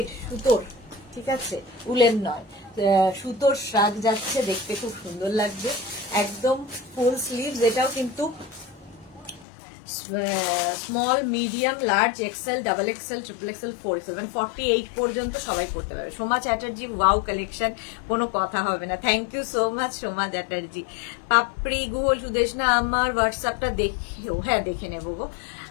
সুতোর, ঠিক আছে, উলেন নয়, সুতোর শ্রাগ যাচ্ছে, দেখতে খুব সুন্দর লাগবে, একদম ফুল স্লিভস। এটাও কিন্তু small medium large XL double XL triple XL 4XL মানে 48 পর্যন্ত সবাই করতে পারবে। সোমা চ্যাটার্জি, ওয়াও কালেকশন, কোনো কথা হবে না। Thank you so much Soma Chatterjee. Papri গুহল সুদেশনা, আমার হোয়াটসঅ্যাপটা দেখেও, হ্যাঁ দেখে নেবো গো।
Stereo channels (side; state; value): right; drops out; at 9.5 s